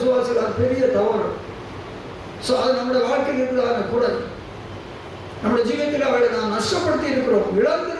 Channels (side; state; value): both; identical; correlation 1.00